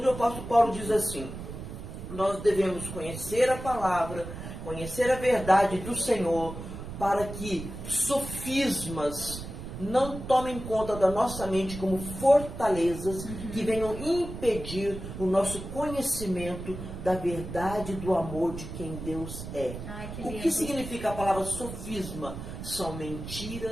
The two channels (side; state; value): right; noise; rumble, 9 dB below the sound